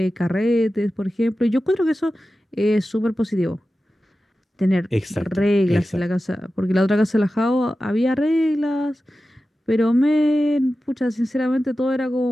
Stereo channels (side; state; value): both; normal; correlation 0.94